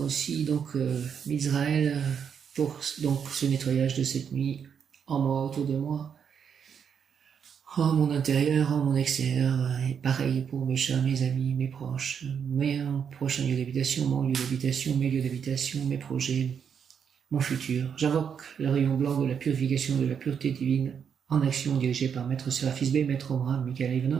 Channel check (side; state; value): left; quieter; 7.4 dB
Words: donc Israël, pour donc ce nettoyage de cette nuit en moi, autour de moi, en mon intérieur, en mon extérieur, et pareil pour mes chats, mes amis, mes proches, mes prochains lieux d'habitation, mon lieu d'habitation, mes lieux d'habitation, mes projets, mon futur. J'invoque le rayon blanc de la purification, de la pureté divine en action dirigée par Maître Seraphis B, Maître Omram, Michael